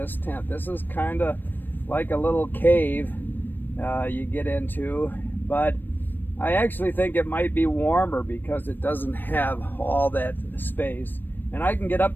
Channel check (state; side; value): late; right; 0.093 ms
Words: tent. This is kind of like a little cave you get into, but I actually think it might be warmer because it doesn't have all that space. And I can get